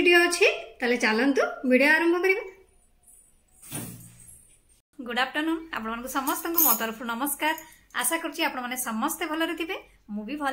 अछि ताले चलंतु वीडियो आरंभ करिबा। गुड आफ्टरनून आपण समस्त मो तरफ नमस्कार। आशा करछि आपण माने समस्त भलरे थिबे मु भी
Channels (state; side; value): identical; both; correlation 1.00